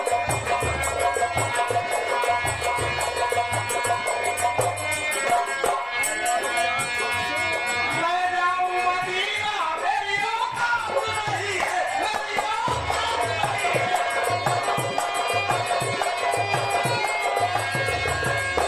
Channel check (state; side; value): identical; both; correlation 1.00